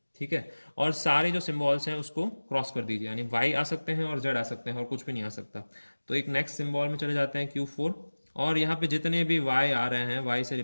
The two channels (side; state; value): both; inverted; correlation -1.00